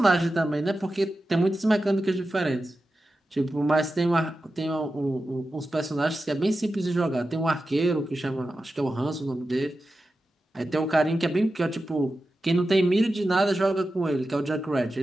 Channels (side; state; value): both; normal; correlation 0.92